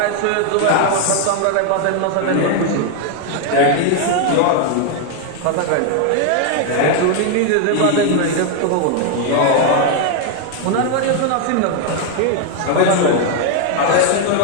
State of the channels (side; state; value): both; different; correlation 0.00